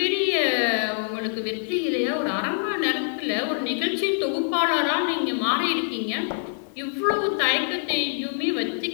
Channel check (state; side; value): silent; right; digital silence